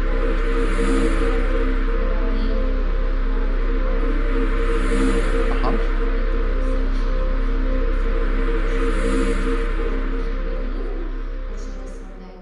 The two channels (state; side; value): identical; both; correlation 1.00